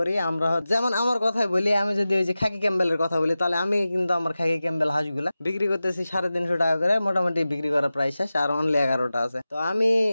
আমরা যেমন আমার কথাই বলি, আমি যদি ওই যে খাকি ক্যাম্বেলের কথা বলি, তাহলে আমি কিন্তু আমার খাকি ক্যাম্বেল হাঁসগুলা বিক্রি করতেছি 350 টাকা করে, মোটামুটি বিক্রি করার প্রায় শেষ। আর অনলি 11টা আছে। তো আমি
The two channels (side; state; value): both; inverted; correlation -0.95